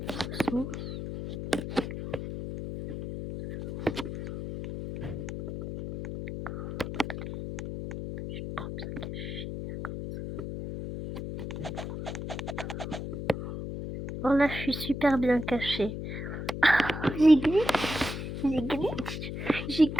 Oh là, je suis super bien cachée. Oh, j'ai glitch. J'ai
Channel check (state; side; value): noise; left; hum, 6 dB below the sound